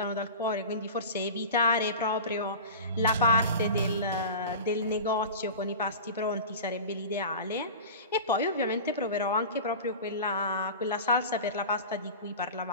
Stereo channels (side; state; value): both; inverted; correlation -0.32